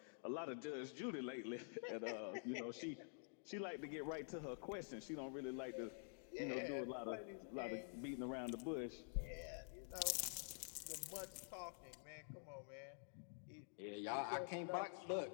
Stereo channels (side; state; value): right; silent; digital silence